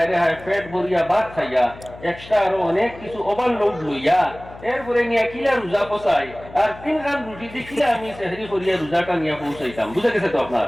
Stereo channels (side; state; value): left; noise; hum, 18 dB below the sound